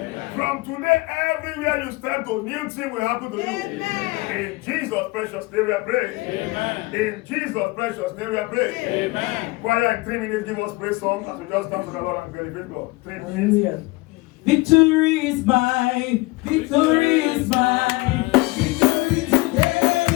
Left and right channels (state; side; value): quieter; right; 23.1 dB